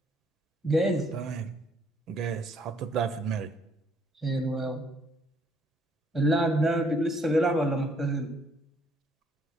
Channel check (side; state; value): both; normal; correlation 0.67